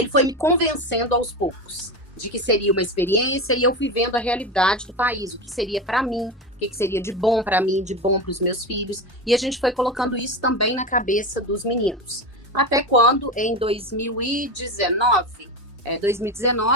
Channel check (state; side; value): normal; both; correlation 0.21